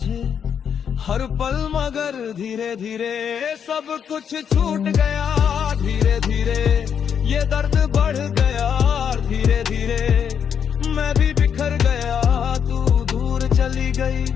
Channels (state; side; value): quieter; right; 7.8 dB